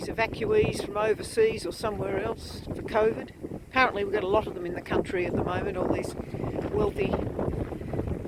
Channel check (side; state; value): both; identical; correlation 1.00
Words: evacuees from overseas or somewhere else for COVID. Apparently we've got a lot of them in the country at the moment, all these wealthy